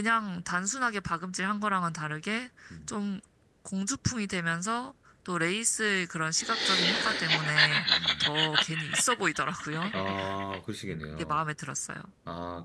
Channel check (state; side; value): identical; both; correlation 1.00